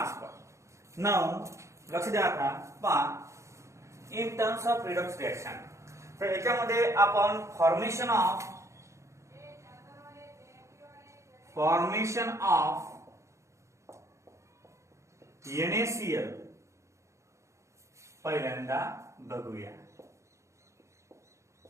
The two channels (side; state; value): left; late; 0.14 ms